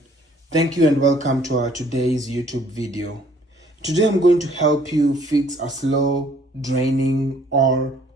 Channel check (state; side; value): normal; both; correlation 0.60